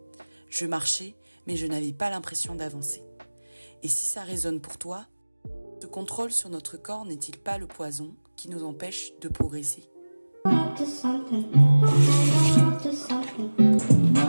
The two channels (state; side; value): inverted; both; correlation -1.00